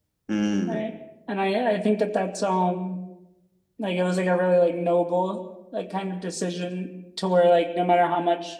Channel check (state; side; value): identical; both; correlation 1.00